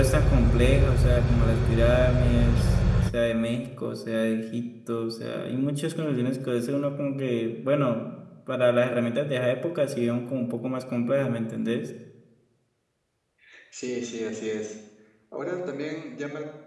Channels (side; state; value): both; identical; correlation 1.00